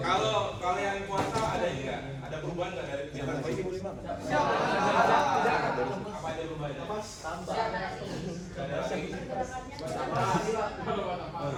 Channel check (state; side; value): identical; both; correlation 1.00